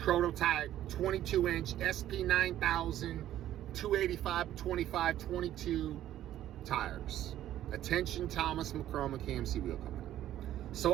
22-inch SP9000 285/25 22 tires. Attention, Thomas McCormick KMC Wheel Company.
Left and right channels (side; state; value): left; quieter; 12.6 dB